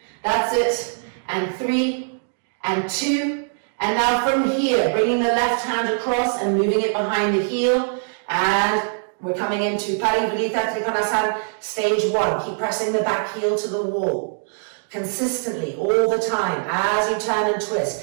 That's it. And 3 and 2. And now from here, bringing the left hand across and moving it behind the heel. And we're coming into Parivrita Trikonasana, stage 1. Keep pressing the back heel to the wall. Consistently, all the time, as you turn and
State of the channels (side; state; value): left; silent; digital silence